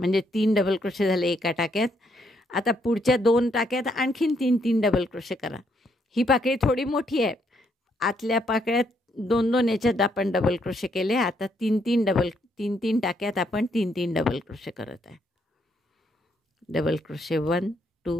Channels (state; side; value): normal; both; correlation 0.73